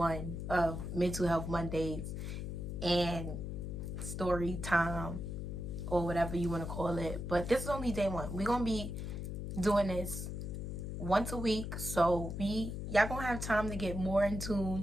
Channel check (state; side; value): noise; left; hum, 5 dB below the sound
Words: of Mental Health Mondays and story time, or whatever you want to call it. But this is only day one. We're gonna be doing this once a week, so y'all gonna have time to get more in